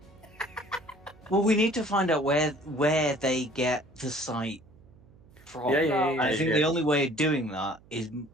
Well, we need to find out where they get the site from. Yeah, I think the only way of doing that is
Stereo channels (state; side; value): noise; right; hum, 26 dB below the sound